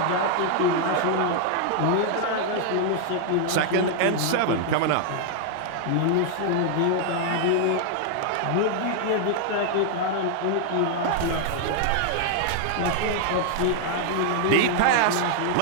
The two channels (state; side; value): different; both; correlation 0.00